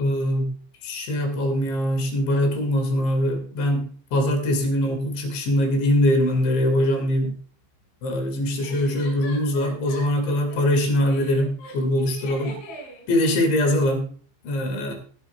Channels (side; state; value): right; late; 15 ms